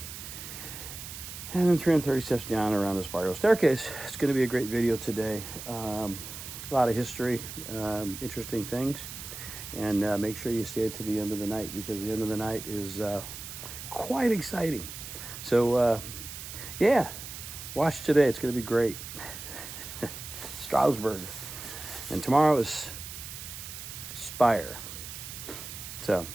and then 330 steps down around a spiral staircase. It's going to be a great video today. A lot of history, interesting things. And make sure you stay to the end of the night, because the end of the night is quite exciting. So, yeah, watch today. It's going to be great. Strasbourg. And tomorrow is Spire. So,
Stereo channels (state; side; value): noise; right; hiss, 10 dB below the sound